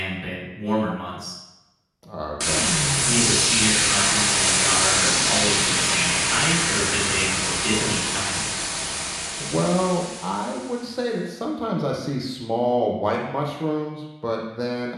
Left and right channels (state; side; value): identical; both; correlation 1.00